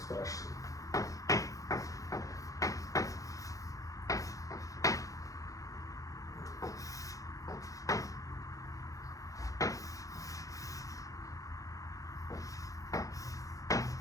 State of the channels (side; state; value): right; late; 0.16 ms